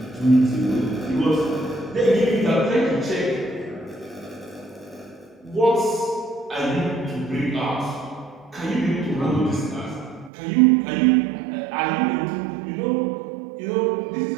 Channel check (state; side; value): drops out; left; at 10.3 s